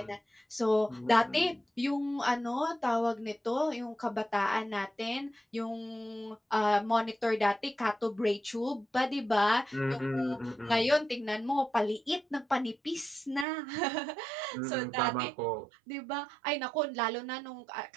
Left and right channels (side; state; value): left; drops out; at 13.5 s